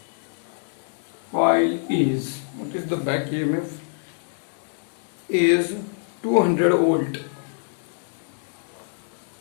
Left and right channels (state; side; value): silent; right; digital silence